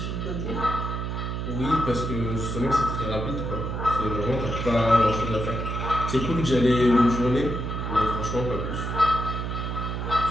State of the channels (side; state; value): right; noise; hum, 3 dB below the sound